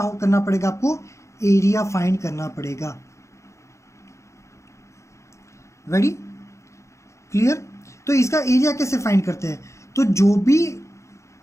करना पड़ेगा, आपको एरिया फाइंड करना पड़ेगा। Ready, clear. तो इसका एरिया कैसे फाइंड करते हैं, तो जो भी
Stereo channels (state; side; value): late; right; 0.14 ms